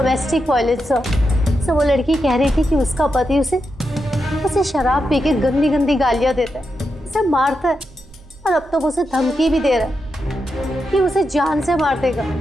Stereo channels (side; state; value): both; normal; correlation 0.86